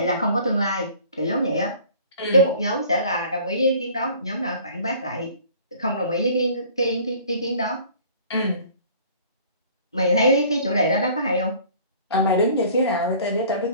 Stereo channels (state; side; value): inverted; both; correlation -0.50